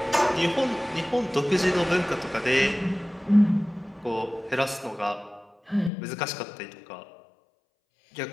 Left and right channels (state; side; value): drops out; right; at 5.9 s